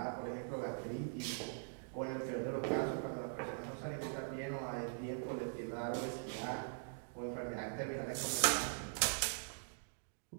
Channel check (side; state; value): left; silent; digital silence